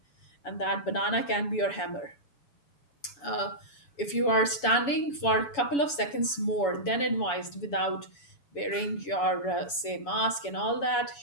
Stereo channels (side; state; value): right; late; 7.0 ms